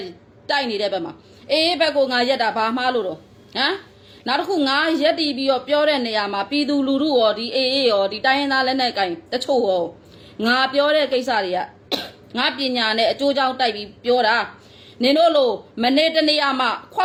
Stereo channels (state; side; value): identical; both; correlation 1.00